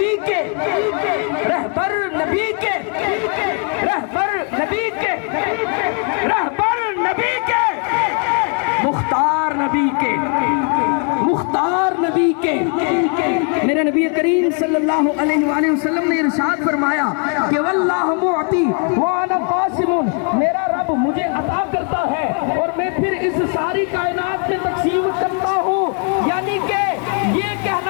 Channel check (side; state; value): right; quieter; 39.2 dB